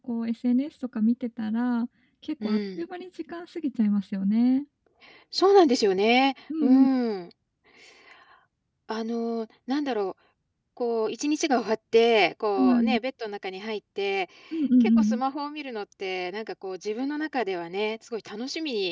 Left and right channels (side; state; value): both; identical; correlation 1.00